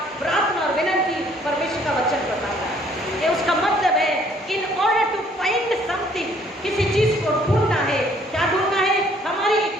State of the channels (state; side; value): normal; both; correlation 0.61